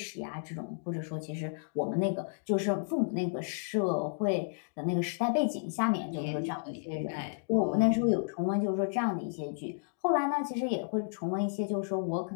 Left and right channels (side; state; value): right; silent; digital silence